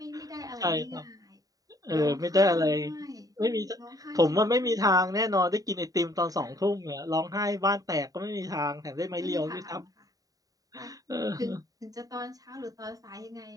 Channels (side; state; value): left; late; 0.18 ms